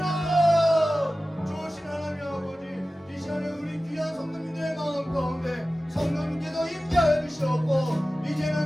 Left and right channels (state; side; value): normal; both; correlation 0.96